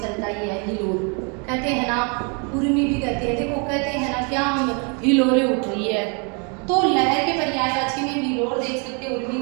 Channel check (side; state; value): left; quieter; 35.1 dB